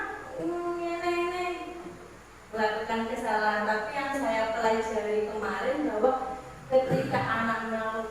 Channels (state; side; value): identical; both; correlation 1.00